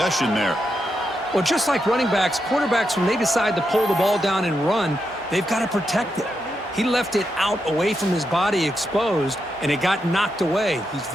there. Well, just like running backs, quarterbacks, when they decide to pull the ball down and run, they've got to protect it. He left it out away from his body exposed, and it got knocked away. He's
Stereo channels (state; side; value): normal; both; correlation 0.84